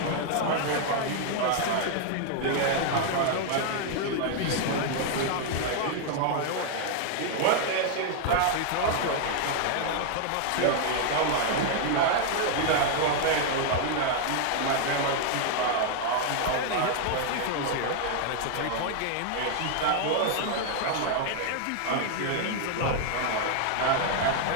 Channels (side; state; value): both; different; correlation 0.00